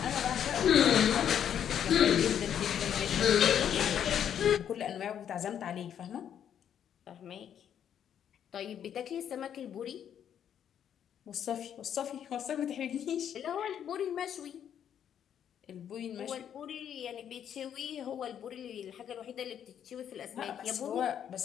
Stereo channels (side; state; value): right; quieter; 9.2 dB